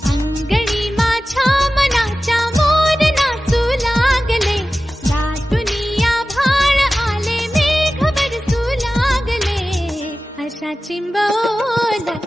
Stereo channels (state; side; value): normal; both; correlation 0.95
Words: अंगणी माझ्या मनाच्या मोर नाचू लागले, दाटुनी आभाळ आले, मेघ बरसू लागले. अशा